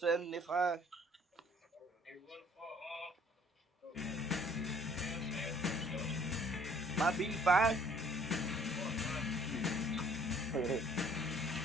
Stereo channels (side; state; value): both; normal; correlation 0.58